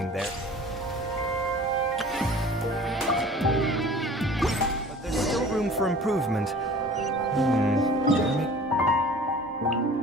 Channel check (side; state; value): both; normal; correlation 0.45